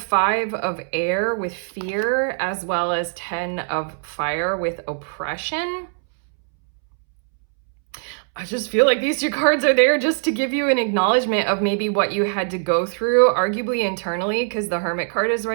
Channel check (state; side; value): silent; left; 64 dB below the other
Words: of air with fear, as well as 10 of fire with oppression. I just feel like these 2 cards are there just to give you an acknowledgement of maybe what you had to go through, arguably internally, because the Hermit card is